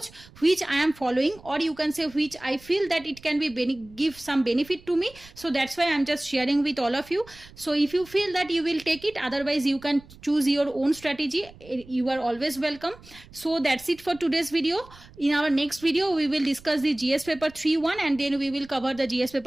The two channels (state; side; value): noise; right; rumble, 22 dB below the sound